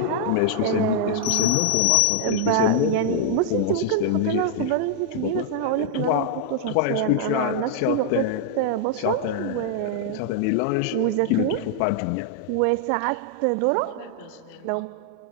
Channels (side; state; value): both; different; correlation -0.01